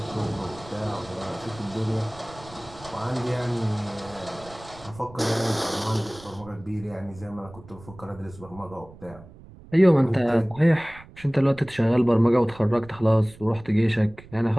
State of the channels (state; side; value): noise; right; rumble, 20 dB below the sound